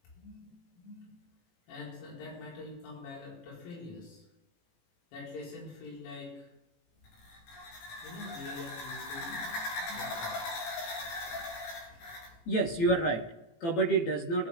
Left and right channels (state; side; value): late; right; 18 ms